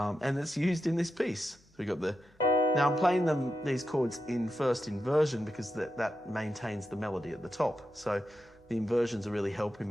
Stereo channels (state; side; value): normal; both; correlation 0.88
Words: it's used in this piece. So we got now I'm playing these chords in first inversion because that maintains the melody at the top. So the inversions are really